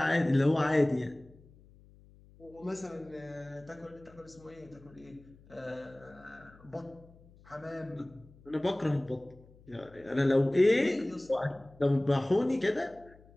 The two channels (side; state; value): left; noise; hum, 25 dB below the sound